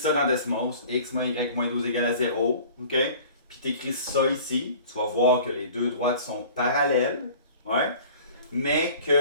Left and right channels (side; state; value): both; inverted; correlation -0.45